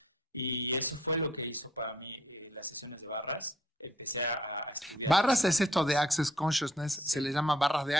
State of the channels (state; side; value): normal; both; correlation 0.63